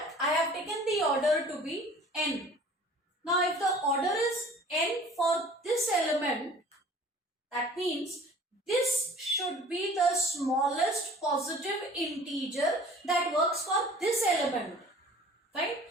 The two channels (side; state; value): both; normal; correlation 0.47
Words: I have taken the order to be n. Now if the order is n for this element, that means this should be the smallest positive integer that works for this element, right?